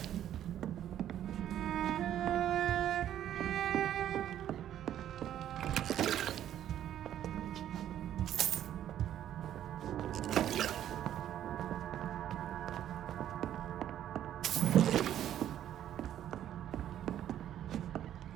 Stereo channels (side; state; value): left; quieter; 11.2 dB